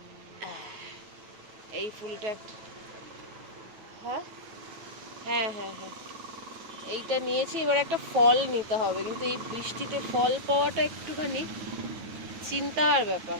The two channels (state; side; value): late; left; 9.3 ms